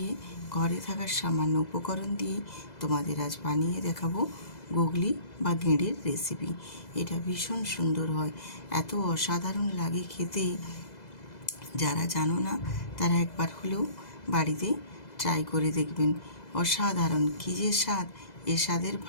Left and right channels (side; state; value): right; late; 2.0 ms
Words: ঘরে থাকার সামান্য উপকরণ দিয়ে তোমাদের আজ বানিয়ে দেখাবো গুগলি বা গেঁড়ির রেসিপি। এটা ভীষণ সুন্দর হয়, এত অসাধারণ লাগে খেতে। যারা জানো না তারা একবার হলেও বাড়িতে ট্রাই করে দেখবেন। অসাধারণ কী যে স্বাদ, এ স্বাদের